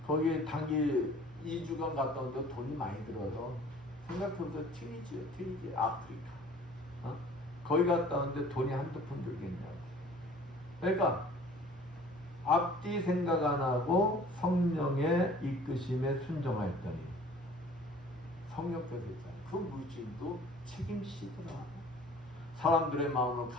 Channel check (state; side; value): normal; both; correlation 0.49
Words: 거기 단기 2주간 갔다 오는데 돈이 많이 들어서 생각해보세요. 튀니지 아프리카. 거기 갔다 오는데 돈이 한두 푼 들겠냐고. 그러니까 앞뒤 생각 안 하고 성령의 이끄심에 순종하였더니 성령께서 있잖아요. 그 물질도 책임지더라. 사람들의 마음을